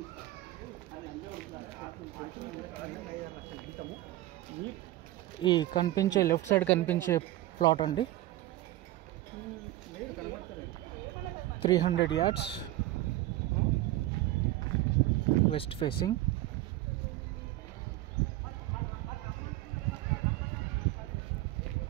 ఈ కనిపించే లెఫ్ట్ సైడ్ కనిపించే ప్లాట్ అండి, 300 yards, west facing.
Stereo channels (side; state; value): left; quieter; 15.9 dB